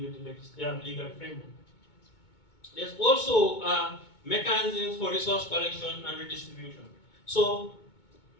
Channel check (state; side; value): late; right; 2.2 ms